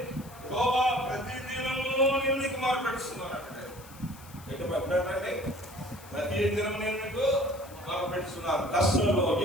యెహోవా ప్రతి దినము నేను నీకు మొరపెడుతున్నాను అంటే ఎటు పెట్టండి. ప్రతి దినం నేను నీకు మొరపెడుతున్నాను. కష్టంలో,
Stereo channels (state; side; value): noise; left; hiss, 20 dB below the sound